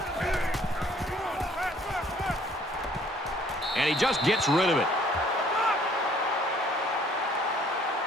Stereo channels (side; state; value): both; normal; correlation 0.59